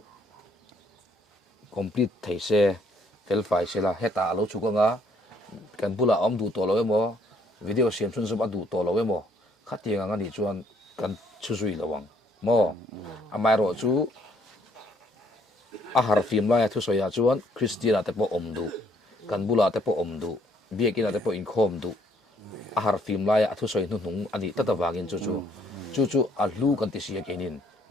complete theise fel fai sela heta lo chu nga kan bula om du to lo emo video siam chun zum adu to lo emo khatia nga ni chuan kan chu zui lawang mo amai ro chu a har film la thu soya chuan christiana te po omdu kan bula te po omdu biekina te po in khom du a har film la thu soi nu nung ani tata wangin chu a lu kan ti sia kenin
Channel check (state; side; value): normal; both; correlation 0.66